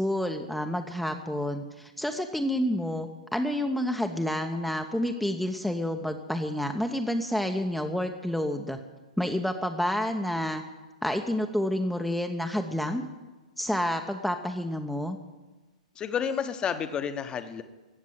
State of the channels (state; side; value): normal; both; correlation 0.82